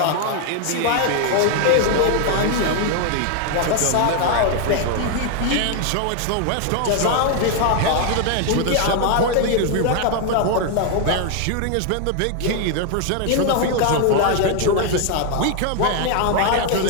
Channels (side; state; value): both; different; correlation 0.00